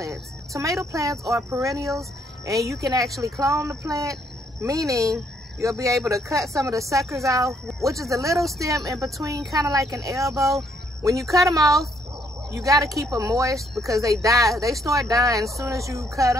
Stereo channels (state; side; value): normal; both; correlation 0.71